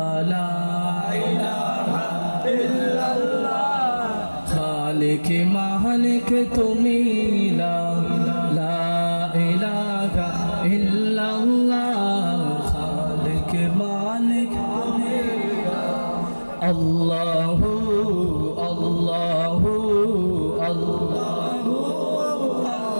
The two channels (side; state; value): both; inverted; correlation -1.00